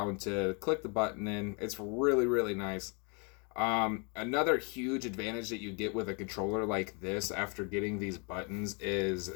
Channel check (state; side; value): quieter; right; 34.5 dB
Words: to click the button in. It's really nice. Another huge advantage that you get with a controller like this after getting these buttons is